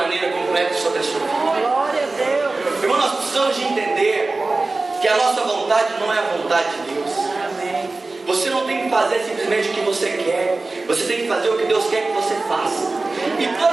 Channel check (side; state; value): left; quieter; 3.4 dB